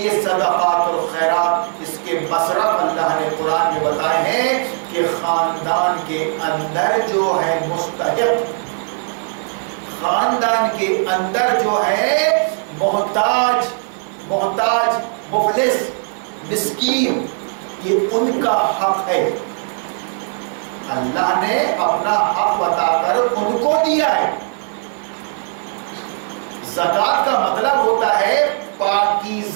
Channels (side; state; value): left; silent; 67 dB below the other